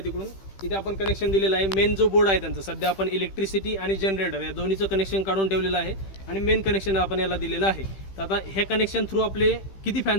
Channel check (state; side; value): late; right; 15 ms